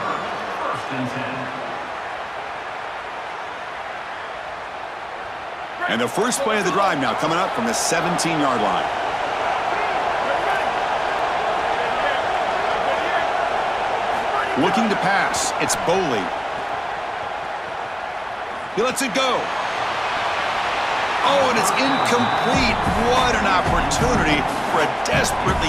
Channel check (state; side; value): identical; both; correlation 1.00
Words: And the first play of the drive now coming up from the 17-yard line. Looking to pass. It's Boley. He lets it go. Oh, and it's incomplete. What an opportunity for a